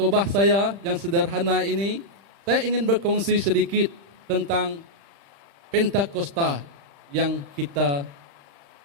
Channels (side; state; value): left; late; 35 ms